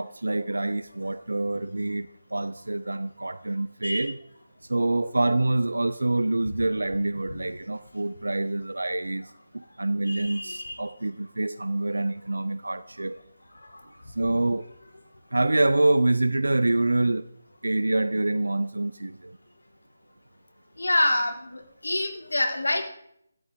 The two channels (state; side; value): inverted; both; correlation -0.98